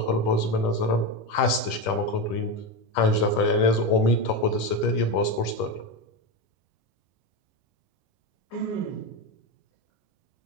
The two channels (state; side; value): late; right; 10 ms